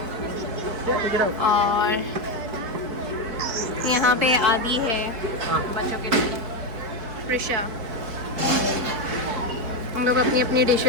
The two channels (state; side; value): late; left; 4.6 ms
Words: और यहाँ पे आदि है बच्चों के लिए. प्रिशा. हम लोग अपनी अपनी